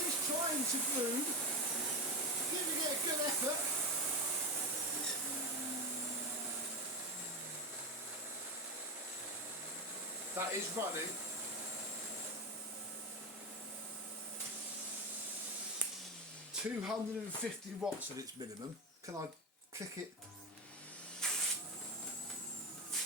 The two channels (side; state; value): both; normal; correlation 0.17